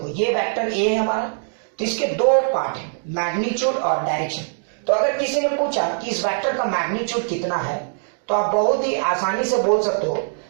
ये वेक्टर a है हमारा, तो इसके दो पार्ट है, मैग्नीट्यूड और डायरेक्शन। तो अगर किसी ने पूछा कि इस वेक्टर का मैग्नीट्यूड कितना है, तो आप बहुत ही आसानी से बोल सकते हो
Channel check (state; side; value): silent; left; digital silence